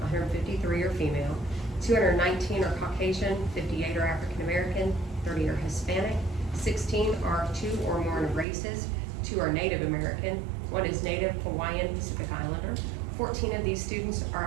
are female, 219 are Caucasian, 58 are African American, 30 are Hispanic, 16 are 2 or more races, 2 are Native American, 1 is Native Hawaiian Pacific Islander. 14 of these students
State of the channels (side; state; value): left; drops out; at 8.5 s